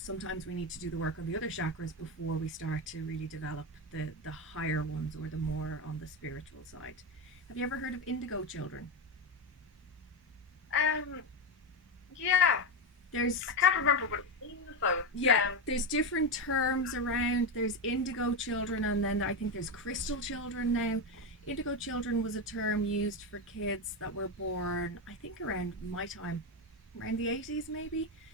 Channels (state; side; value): normal; both; correlation 0.13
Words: we need to do the work on the other chakras before we start to really develop the higher ones, or the more on the spiritual side. Have you ever heard of Indigo Children? Yeah. There's I can't remember what it means though. There's different terms around. There's Indigo Children, and then I think there's Crystal Children now. Indigo Children was a term used for kids that were born, I think, around my time, around the 80s maybe,